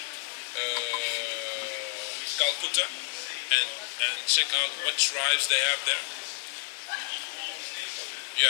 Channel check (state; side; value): quieter; right; 36.9 dB